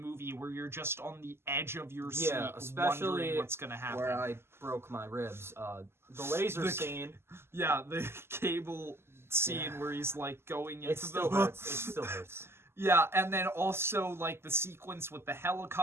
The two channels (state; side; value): late; left; 0.12 ms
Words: where you're just on the edge of your seat, Yeah, especially wondering what's gonna happen. Where I broke my ribs. The laser The- scene. Yeah, the cable scene Yeah. where he's like going into It still hurts. It still hurts. Yeah, and then also like the sequence with the